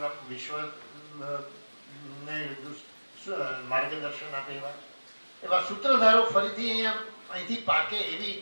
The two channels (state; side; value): inverted; both; correlation -1.00